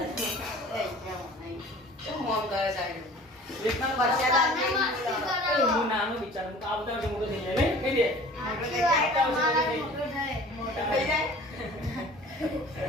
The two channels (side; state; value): both; normal; correlation 0.46